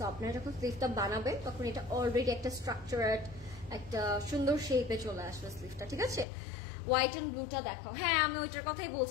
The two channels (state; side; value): drops out; right; at 6.2 s